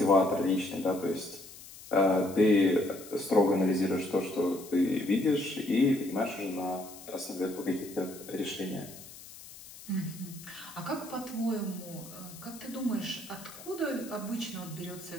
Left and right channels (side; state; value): left; noise; hiss, 17 dB below the sound